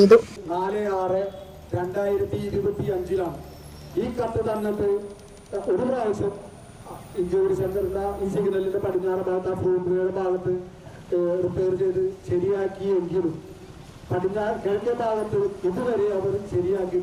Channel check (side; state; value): both; identical; correlation 1.00